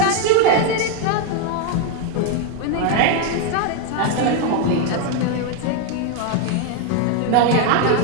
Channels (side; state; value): both; different; correlation 0.01